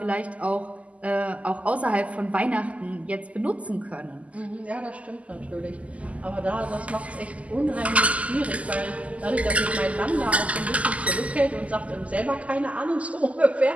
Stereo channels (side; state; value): left; late; 0.068 ms